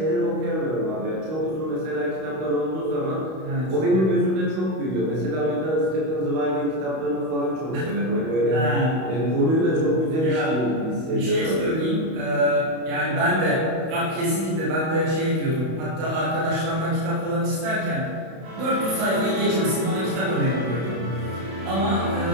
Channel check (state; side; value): late; left; 31 ms